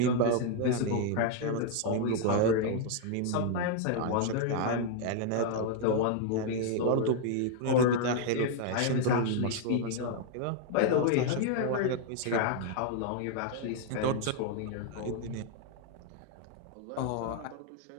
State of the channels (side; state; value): both; different; correlation 0.00